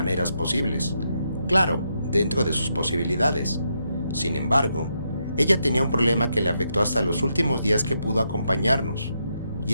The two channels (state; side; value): inverted; both; correlation -0.81